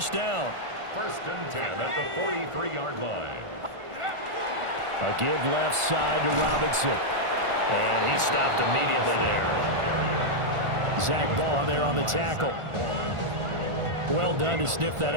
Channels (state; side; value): late; left; 1.5 ms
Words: down. First and 10 at the 43-yard line. A give left side to Robinson. And he stopped immediately there. Zach Ball there on the tackle. Well done to sniff that